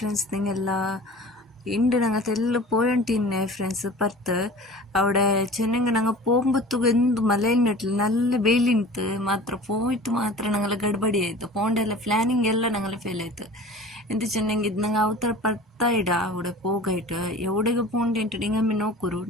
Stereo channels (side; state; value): both; normal; correlation 0.40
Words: നിങ്ങളെല്ലാം ഉണ്ട്? ഞങ്ങൾ തെല്ലാം പോയിട്ടിന്നെ ഫ്രണ്ട്സ് പത്ത് അവിടെ ചെന്നെങ്കിൽ ഞങ്ങൾ പോകുമ്പോഴത്തേക്ക് എന്ത് മലയിലിട്ടില്ല, നല്ല വെയിലിಂತು ಮಾತ್ರ പോയിട്ട് ಮಾತ್ರ ഞങ്ങൾ ಗಡ್ಬಡಿ ಆಯಿತು. പോകേണ്ട ಪ್ಲಾನಿಂಗ್ ಎಲ್ಲ ഞങ്ങൾ ಫೇಲ್ ಆಯಿತು. ಎಂತ ಚೆನ್ನಂಗೆ ಇದು ನಂಗೆ ಅವತರ ಪತ್ತಾಯಿಡ അവിടെ പോകായിട്ട് എവിടേക്ക് പോകേണ്ടിട്ട് നിങ്ങൾ നോക്കൂರು